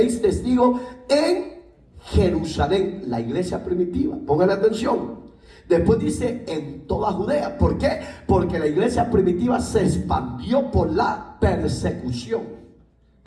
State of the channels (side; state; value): both; identical; correlation 1.00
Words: testigos en Jerusalén, la iglesia primitiva. Póngale atención. Después dice en toda Judea. ¿Por qué? Porque la iglesia primitiva se expandió por la persecución.